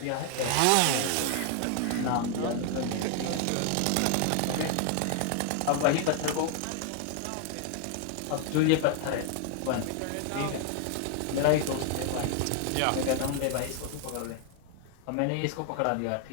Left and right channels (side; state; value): both; different; correlation 0.00